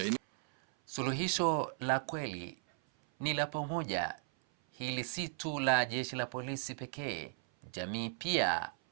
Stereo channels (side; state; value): left; silent; 54 dB below the other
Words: Suluhisho la kweli ni la pamoja. Hili si tu la jeshi la polisi pekee, jamii pia